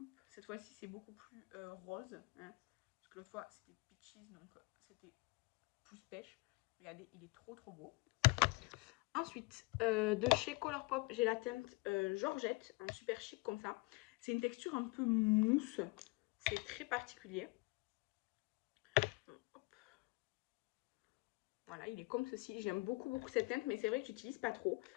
cette fois-ci, c'est beaucoup plus rose. Hein. Parce que l'autre fois, c'était peaches, donc c'était plus pêche. Regardez, il est trop beau. Ensuite, de chez Colourpop, j'ai la teinte Georgette, en super chic comme ça. C'est une texture un peu mousse. C'est très particulier. Hop. Voilà, il est comme ceci. J'aime beaucoup cette teinte, mais c'est vrai que j'utilise pas trop.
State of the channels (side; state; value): right; quieter; 26.4 dB